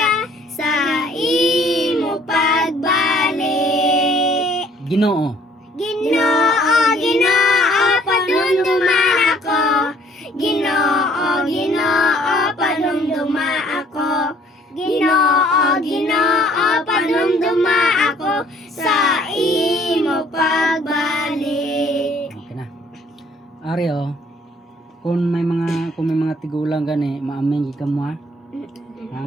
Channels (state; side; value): normal; both; correlation 0.59